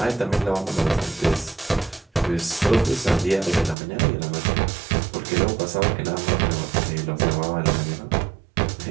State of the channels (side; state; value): left; drops out; at 3.8 s